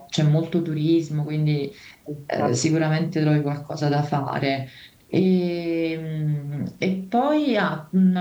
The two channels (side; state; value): both; identical; correlation 1.00